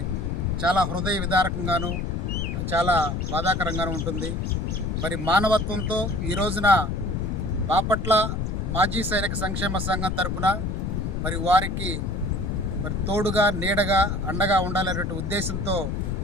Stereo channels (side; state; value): left; noise; rumble, 1 dB below the sound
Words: చాలా హృదయ విదారకంగాను, చాలా బాధాకరంగాను ఉంటుంది. మరి మానవత్వంతో ఈ రోజున బాపట్ల మాజీ సైనిక సంక్షేమ సంఘం తరపున మరి వారికి మరి తోడుగా, నీడగా, అండగా ఉండాలనే ఉద్దేశంతో